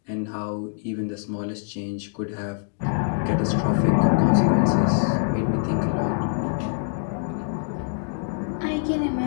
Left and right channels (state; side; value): silent; right; digital silence